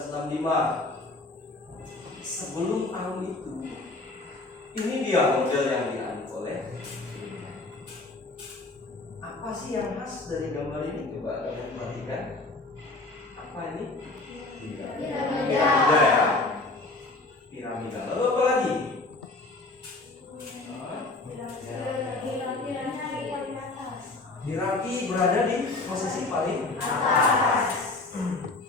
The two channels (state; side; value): quieter; right; 3.2 dB